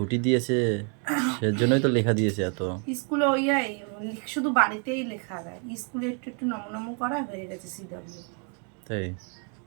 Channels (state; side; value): quieter; left; 39.0 dB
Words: দিয়েছে সেজন্যই তো লেখা দিয়েছে এত। স্কুলে ওই শুধু বাড়িতেই লেখা দেয়, স্কুলে একটু একটু নমনম করা হয়ে গেছে সিডব্লিউ। তাই